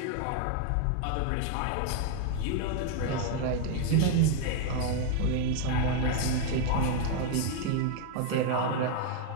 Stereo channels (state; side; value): different; both; correlation 0.01